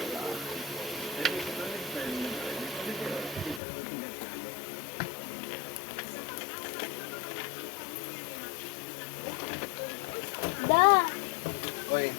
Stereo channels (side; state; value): right; drops out; at 3.6 s